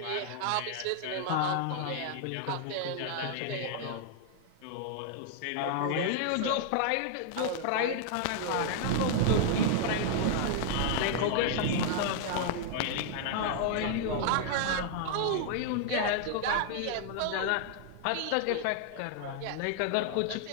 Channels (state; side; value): different; both; correlation 0.00